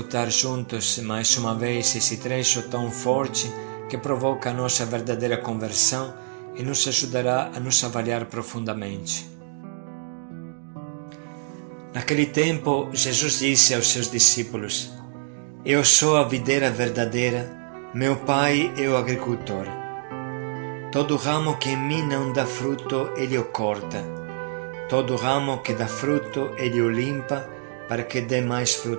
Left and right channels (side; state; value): left; silent; digital silence